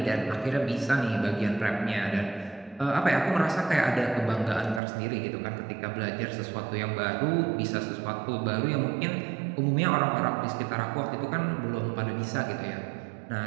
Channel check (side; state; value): left; drops out; at 4.8 s